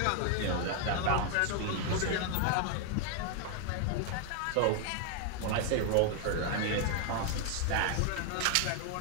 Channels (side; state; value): both; different; correlation 0.00